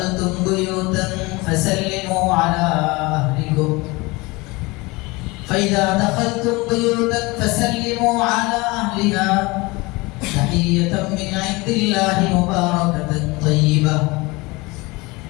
বুয়ুতান ফাসাল্লিমু আলা আহলিকুম ফাইদা দাখালতুম বুয়ুতান ফাসাল্লিমু আলা আহলিহা তাহিয়াতাম মিন ইনদিল্লাহি মুবারাকাতান তাইয়্যিবা।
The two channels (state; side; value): quieter; right; 23.9 dB